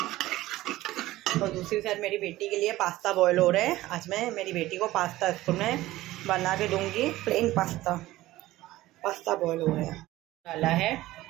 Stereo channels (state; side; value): quieter; left; 16.7 dB